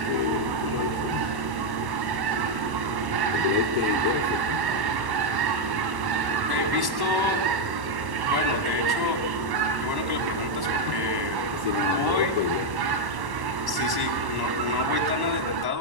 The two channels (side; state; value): left; late; 1.1 ms